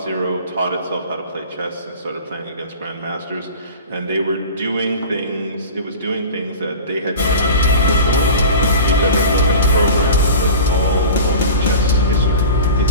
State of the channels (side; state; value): both; inverted; correlation -0.35